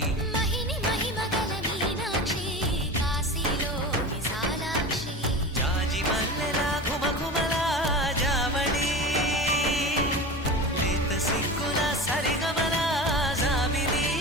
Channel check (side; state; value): both; normal; correlation 0.30